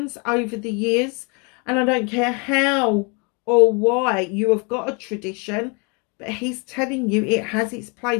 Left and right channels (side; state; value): right; quieter; 32.4 dB